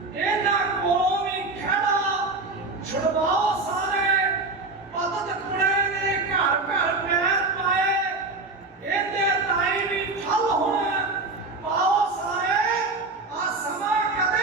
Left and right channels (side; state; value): left; quieter; 3.5 dB